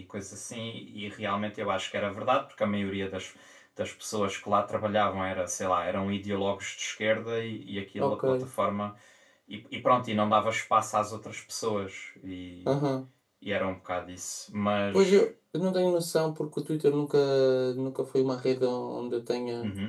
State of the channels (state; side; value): identical; both; correlation 1.00